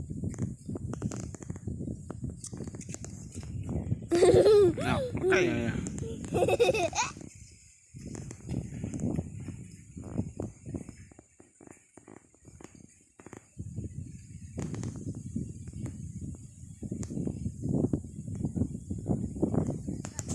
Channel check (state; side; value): identical; both; correlation 1.00